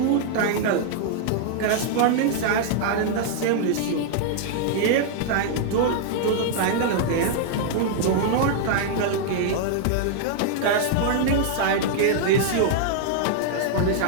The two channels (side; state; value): both; different; correlation -0.01